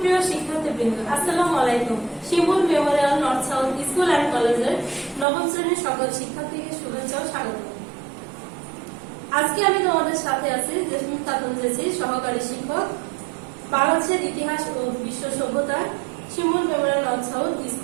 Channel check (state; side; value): drops out; left; at 5.2 s